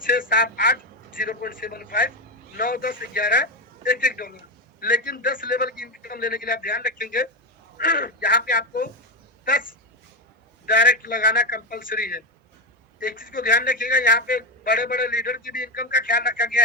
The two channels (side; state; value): both; normal; correlation 0.11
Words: 6 7 8 0.75, 9 10 11 $1। लेकिन 10 लेवल की इनकम लेने के लिए आप ध्यान रखेंगे यहाँ पे आपको 10 डायरेक्ट लगाना कंपलसरी है। एक चीज को ध्यान रखिएगा, यहाँ पे बड़े बड़े लीडर की भी इनकम का ख्याल रखा गया